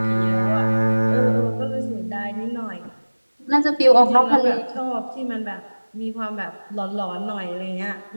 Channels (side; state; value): both; inverted; correlation -1.00